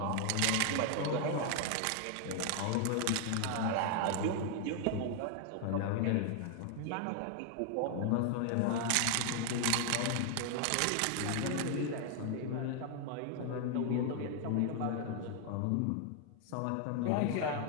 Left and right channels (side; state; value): both; different; correlation 0.00